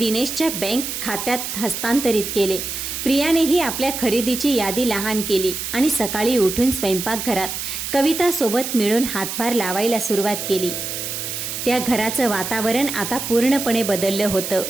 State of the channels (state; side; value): noise; right; hiss, 5 dB below the sound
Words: बँक खात्यात हस्तांतरित केले. प्रियानेही आपल्या खरेदीची यादी लहान केली आणि सकाळी उठून स्वयंपाकघरात कवितासोबत मिळून हातभार लावायला सुरुवात केली. त्या घराचं वातावरण आता पूर्णपणे बदललं होतं.